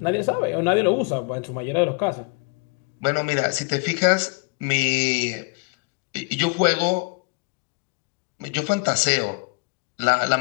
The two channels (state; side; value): quieter; right; 27.1 dB